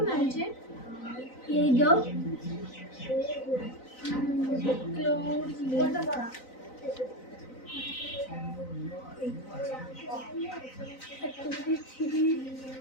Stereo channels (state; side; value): late; right; 3.9 ms